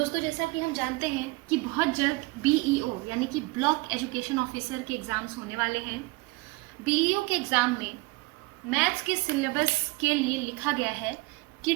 जैसा कि हम जानते हैं कि बहुत जल्द BEO यानी कि ब्लॉक एजुकेशन ऑफिसर के एग्ज़ाम्स होने वाले हैं। BEO के एग्ज़ाम में मैथ्स के सिलेबस के लिए लिखा गया है कि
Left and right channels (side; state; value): left; quieter; 23.9 dB